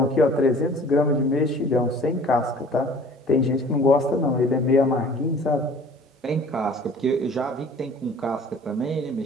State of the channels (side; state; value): both; normal; correlation 0.49